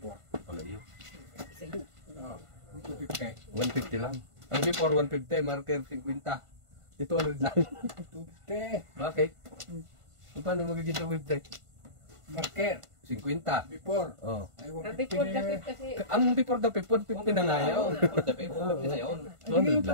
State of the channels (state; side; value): late; left; 1.5 ms